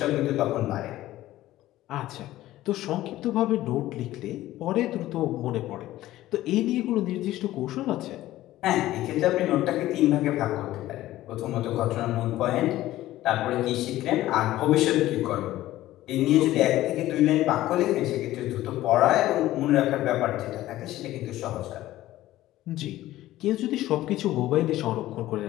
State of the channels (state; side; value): quieter; right; 15.2 dB